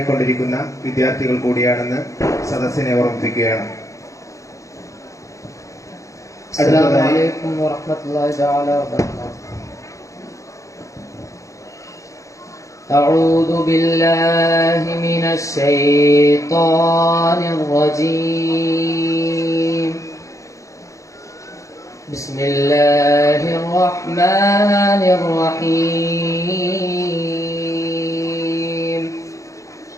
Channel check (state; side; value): late; right; 0.15 ms